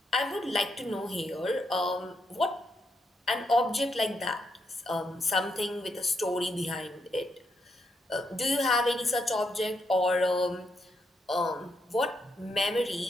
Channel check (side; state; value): both; normal; correlation 0.79